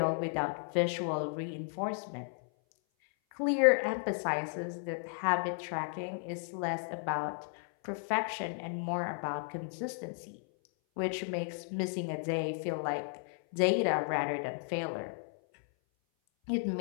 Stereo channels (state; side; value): silent; right; 55 dB below the other